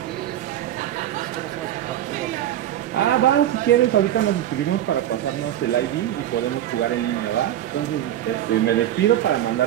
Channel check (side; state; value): left; quieter; 12.1 dB